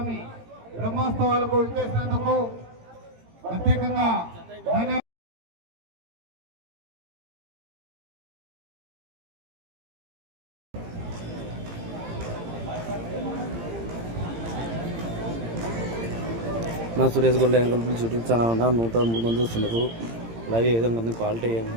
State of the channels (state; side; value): late; left; 18 ms